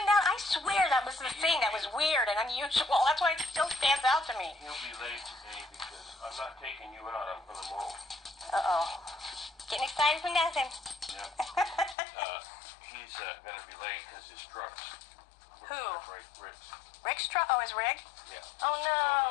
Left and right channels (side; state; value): right; drops out; at 12.0 s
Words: that? I swear that was the thing that was weird and unusual. That's why it still stands out to me. He'll be late today because I'm not taking you out. I'm going to mow. Uh-oh. Getting excited for nothing. Yeah. He's going to be late because his truck's... Who? Rick's. Rick's truck? Oh, his rig? Yeah. Oh,